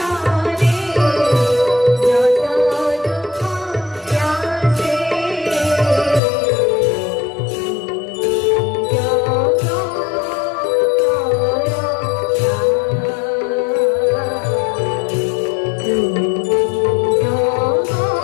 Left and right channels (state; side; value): drops out; right; at 6.2 s